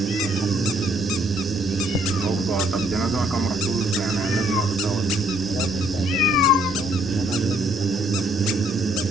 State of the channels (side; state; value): both; normal; correlation 0.66